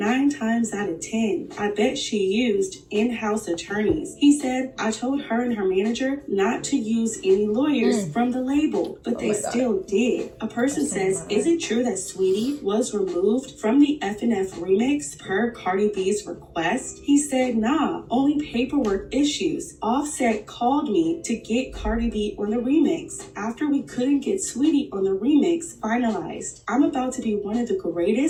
times out of 10, I bet she used in-house attorneys. He said, I told her and her manager not to use any lawyers from the label, but they still did. A person says, is it true that Sweetie was removed from the F&F remix per Cardi B's request? He said, nah, only paperwork issues. Offset called me to get Cardi B on the remix after we couldn't get Sweetie on the remix finalized. I'm about to be one of the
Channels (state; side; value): identical; both; correlation 1.00